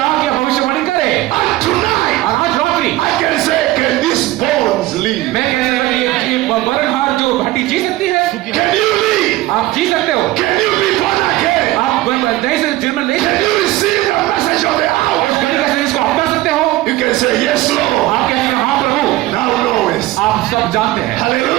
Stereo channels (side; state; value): left; quieter; 17.3 dB